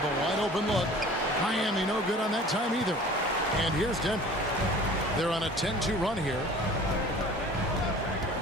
a wide open look. Miami no good on that time either. And here's Denver. They're on a 10-2 run here.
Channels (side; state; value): both; normal; correlation 0.45